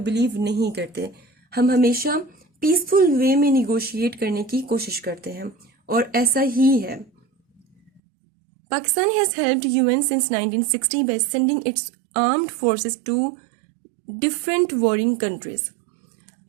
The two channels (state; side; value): drops out; left; at 8.0 s